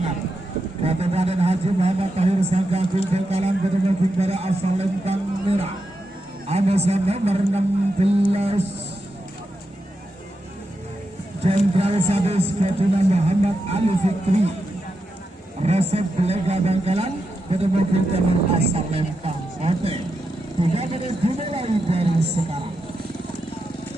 Kabupaten Haji Muhammad Tahir Sanggagung Bengkalan bertemu Bintara asal Lempang Merah. Amasa nomor 16 Jenderal Sadis Ketua Muhammad Ali Fikri Resep Belega Bengkalan bertemu Bintara asal Lempang Oke 3 menit dimulai dari sekarang.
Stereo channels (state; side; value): normal; both; correlation 0.87